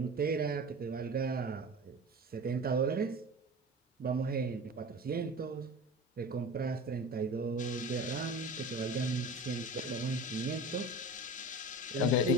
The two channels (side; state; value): both; normal; correlation 0.34